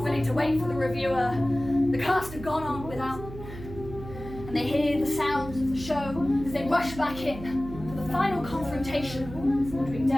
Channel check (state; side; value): noise; right; hum, 12 dB below the sound